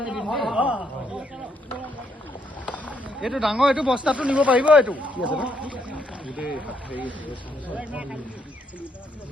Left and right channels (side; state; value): both; normal; correlation 0.74